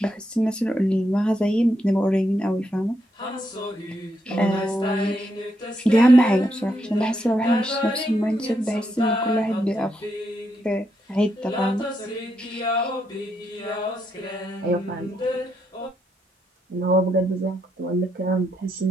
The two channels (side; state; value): both; normal; correlation 0.80